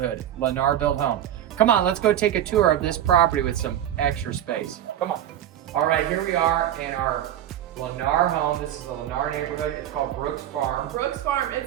Lennar built home. Come on, let's go take a tour of this property with some extra space. Come on. All right, here we are in our Lennar home. This is the Lennar neighborhood. It's called Brooks Farm. Brooks Farm,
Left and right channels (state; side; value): quieter; left; 11.4 dB